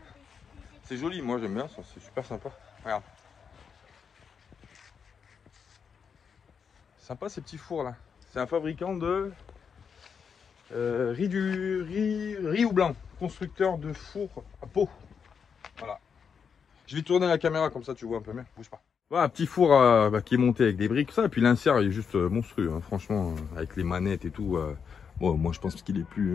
C'est joli, moi j'aime bien ça, c'est super sympa. Regarde. Sympa ces petits fours là. C'est un fabricant de riz ou blanc. Constructeur de fours à peau. Voilà. Je vais tourner la caméra comme ça tu vois un peu mieux. Bouge pas. Voilà, un petit four qui est monté avec des briques, ça. Et puis l'insert il est juste monstrueux, hein. Franchement, avec les manettes et tout. Bon, moi je pense qu'il est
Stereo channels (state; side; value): quieter; right; 6.5 dB